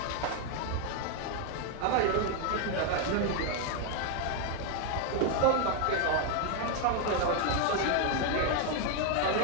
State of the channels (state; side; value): different; both; correlation 0.00